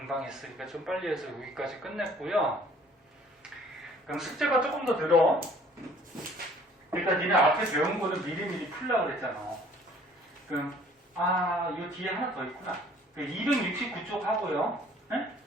했으니까 좀 빨리 해서 여기까지 끝냈고요. 그럼 숙제가 조금 더 늘어. 그러니까 니네 앞에 배운 거는 미리미리 풀려고 그랬잖아. 그럼 이 뒤에 하나 더 있구나. 269쪽 하고요. 네?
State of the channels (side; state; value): both; normal; correlation 0.55